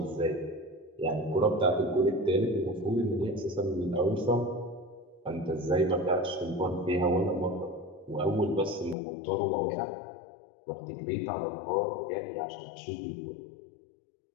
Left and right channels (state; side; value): drops out; right; at 9.0 s